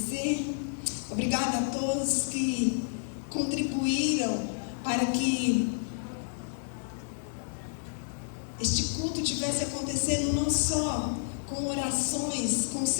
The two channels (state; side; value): silent; right; digital silence